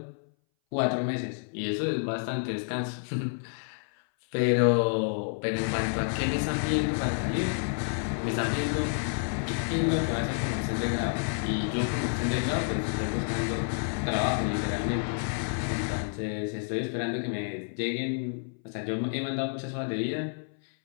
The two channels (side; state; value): right; silent; 58 dB below the other